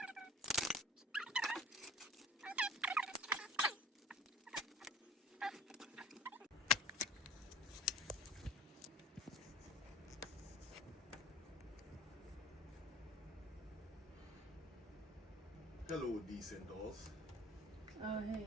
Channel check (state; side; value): normal; both; correlation 0.46